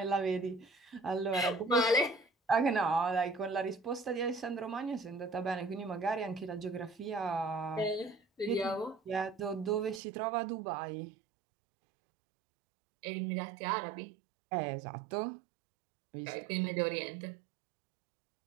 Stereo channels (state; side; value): drops out; left; at 10.0 s